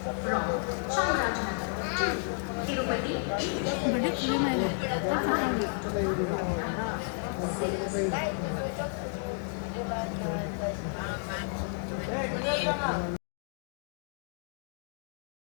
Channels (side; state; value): right; silent; 57 dB below the other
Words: ಬಡ್ಡೆ ಕ್ಲೀನ್ ಇದೆ ಸಾಕಾಗಿ.